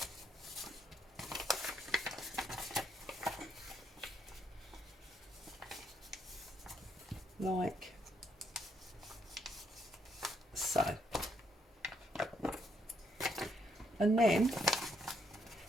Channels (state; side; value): normal; both; correlation 0.74